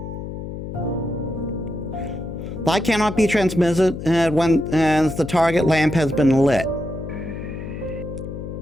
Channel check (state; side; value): noise; left; hum, 8 dB below the sound